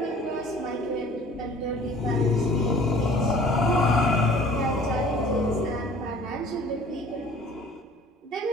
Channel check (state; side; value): normal; both; correlation 0.49